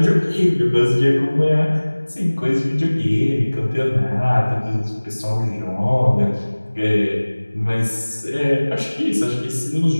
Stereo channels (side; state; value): both; inverted; correlation -1.00